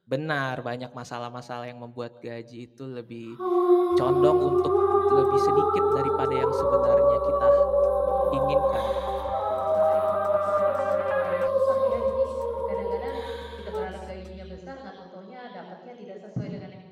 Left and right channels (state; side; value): identical; both; correlation 1.00